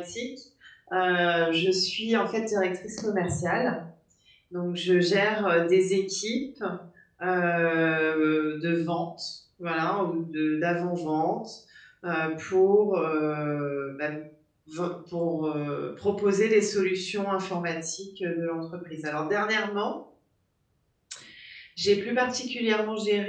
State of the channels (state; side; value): identical; both; correlation 1.00